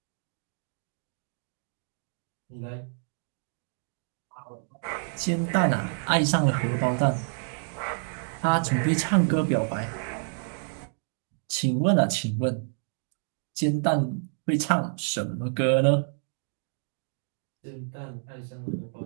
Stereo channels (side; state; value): left; silent; 59 dB below the other